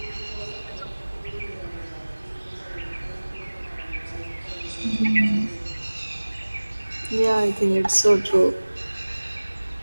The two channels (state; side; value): inverted; both; correlation -1.00